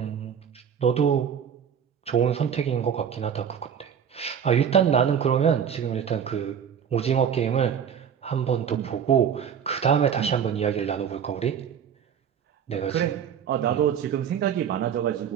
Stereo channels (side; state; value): left; quieter; 8.0 dB